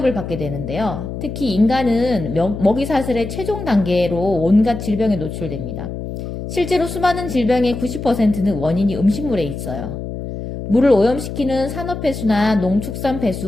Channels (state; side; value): noise; left; hum, 7 dB below the sound